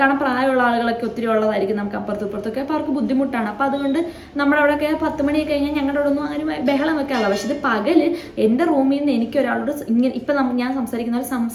പ്രായമുള്ള ആളുകളൊക്കെ ഒത്തിരി ഉള്ളതായിരിക്കും നമുക്ക് അപ്പുറത്തും. അപ്പോൾ അവർക്ക് ബുദ്ധിമുട്ടാണ്. അപ്പോൾ അതുകൊണ്ട് നമ്മുടെ അവിടെയൊക്കെ 10 മണിയൊക്കെ കഴിഞ്ഞാൽ ഞങ്ങളുടെ അവിടെ ഒന്നും ആരും ബഹളം വെക്കാറില്ല. പക്ഷേ ഇത് പകല് എൻ്റെ റൂമിൽ നിന്ന് എനിക്ക് ഒരാളോട് ഇങ്ങനെ ഇപ്പം ഞാൻ സംസാരിക്കുന്ന പോലെ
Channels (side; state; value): both; identical; correlation 1.00